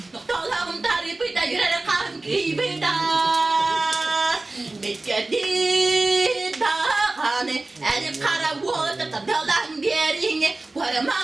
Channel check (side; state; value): left; quieter; 3.1 dB